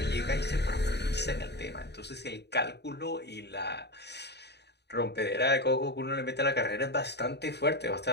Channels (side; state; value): right; late; 0.49 ms